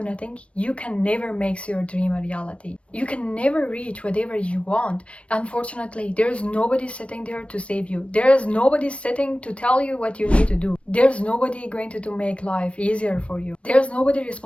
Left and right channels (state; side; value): late; right; 0.061 ms